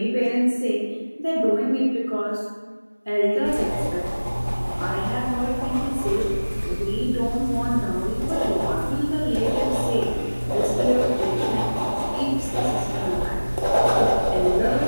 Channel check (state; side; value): inverted; both; correlation -1.00